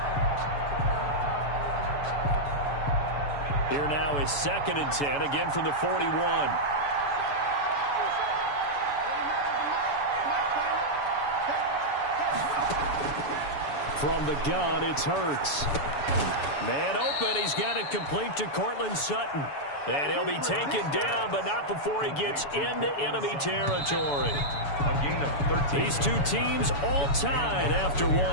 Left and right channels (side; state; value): right; late; 7.0 ms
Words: Here now is 2nd and 10, again from the 41. From the gun, it's Hurts. Man open, he's got it complete to Cortland Sutton. And he'll be taken down, but not before he gets into enemy territory. A gain of 13. These 2 teams all tied after